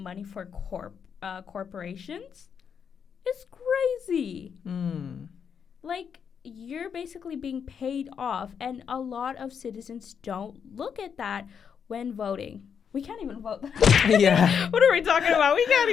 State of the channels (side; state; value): right; quieter; 7.2 dB